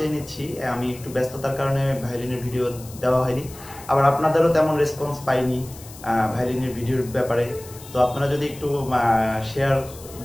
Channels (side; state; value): left; noise; hiss, 18 dB below the sound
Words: নিচ্ছি, আমি একটু ব্যস্ততার কারণে ভায়োলিনের ভিডিও দেওয়া হয়নি। আবার আপনাদেরও তেমন রেসপন্স পাইনি ভায়োলিনের ভিডিওর ব্যাপারে। তো আপনারা যদি একটু শেয়ার